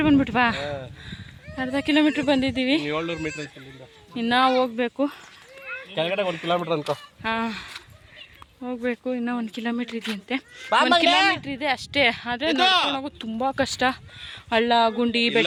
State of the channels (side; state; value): both; identical; correlation 1.00